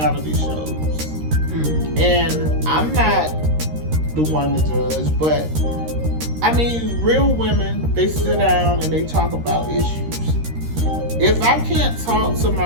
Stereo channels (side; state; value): left; late; 13 ms